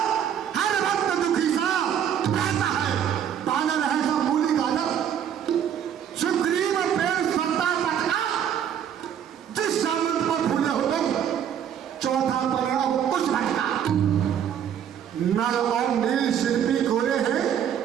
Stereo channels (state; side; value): quieter; left; 9.1 dB